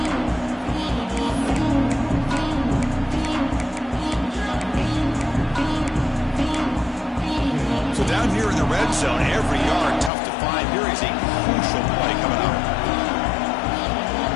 Down here in the red zone, every yard tough to find. Here is a crucial play coming up.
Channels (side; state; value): right; drops out; at 10.1 s